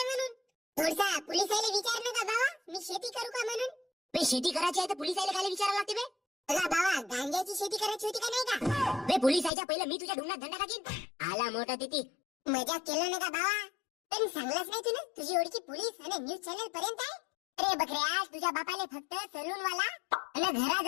म्हणून. थोडसा पोलिसाला विचार ना का बाबा, मी शेती करू का म्हणून. बे शेती करायची आहे तर पोलिसाला काय विचारायला लागते बे? अगं बाबा, गांजाची शेती करायची होती का नाही का? बे पोलिसाच्या पहिलं मी तुझ्या ढुंगणात धंदा टाकीन. आला मोठा तिथे. मजाक केलं ना का बाबा? पण सांगलाच नाही तू ना तुझी ओळखी पोलीस आणि न्यूज चॅनल पर्यंत आहे. अरे बकऱ्या, तुझ्या बापाले फक्त सलून वाला आणि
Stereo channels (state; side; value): drops out; right; at 9.5 s